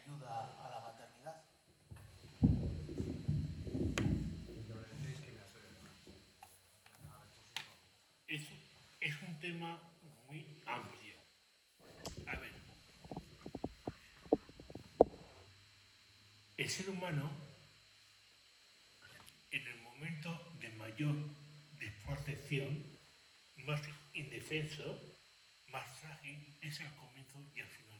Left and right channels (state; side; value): identical; both; correlation 1.00